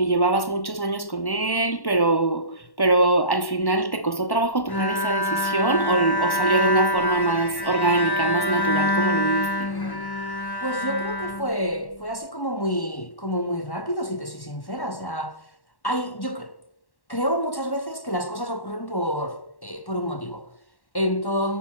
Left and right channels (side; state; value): right; late; 1.1 ms